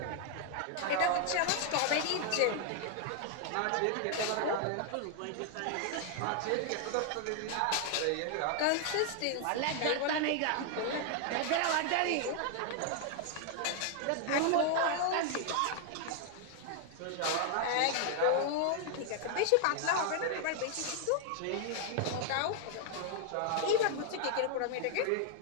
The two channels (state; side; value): different; both; correlation 0.00